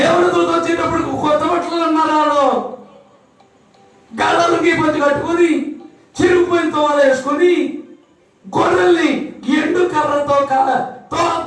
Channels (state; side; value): identical; both; correlation 1.00